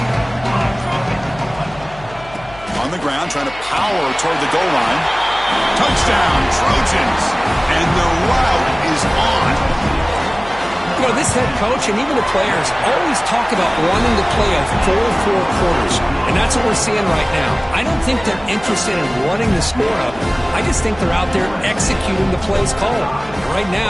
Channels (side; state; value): left; noise; hum, 19 dB below the sound